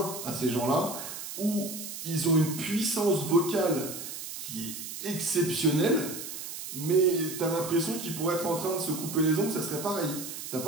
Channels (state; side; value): noise; right; hiss, 8 dB below the sound